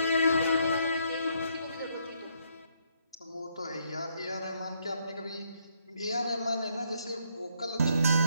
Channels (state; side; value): inverted; both; correlation -0.72